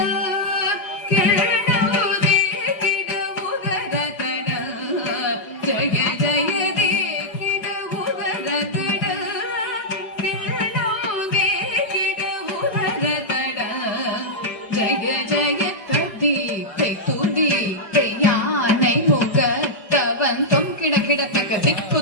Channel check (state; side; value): late; right; 5.1 ms